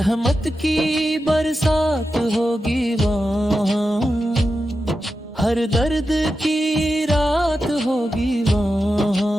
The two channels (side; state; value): both; normal; correlation 0.90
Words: کی برسات ہوگی وہاں، ہر درد کی رات ہوگی